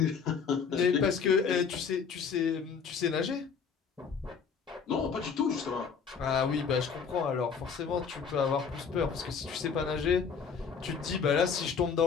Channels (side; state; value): right; quieter; 6.1 dB